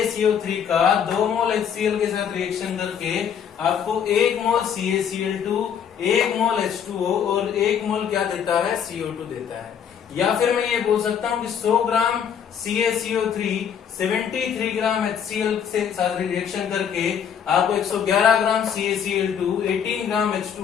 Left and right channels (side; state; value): right; quieter; 8.0 dB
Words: का 2 मोल HCl के साथ रिएक्शन करके आपको 1 मोल CaCl2, 1 मोल H2O और 1 मोल क्या देता है? CO2 देता है। या फिर मैं ये बोल सकता हूं कि 100 ग्राम CaCO3 73 ग्राम HCl से साथ रिएक्शन करके आपको 111 ग्राम CaCl2, 18 ग्राम